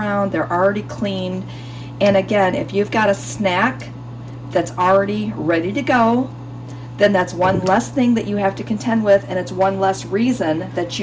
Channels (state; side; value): identical; both; correlation 1.00